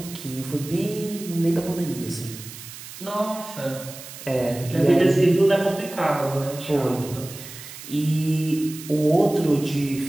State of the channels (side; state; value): right; noise; hiss, 14 dB below the sound